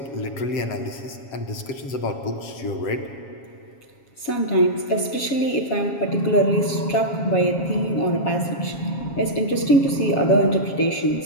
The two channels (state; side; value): late; right; 7.3 ms